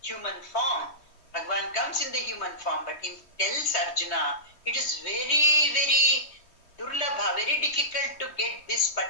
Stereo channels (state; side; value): late; right; 3.2 ms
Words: human form. Bhagavan comes in the human form, but he tells Arjuna, it is very, very durlabha, very difficult to get this